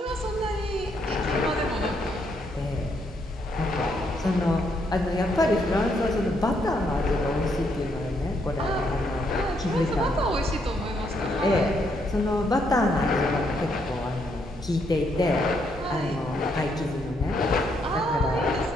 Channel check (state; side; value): normal; both; correlation 0.74